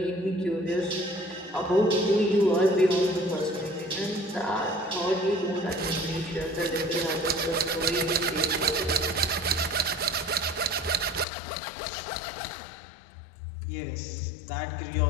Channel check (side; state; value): right; drops out; at 11.2 s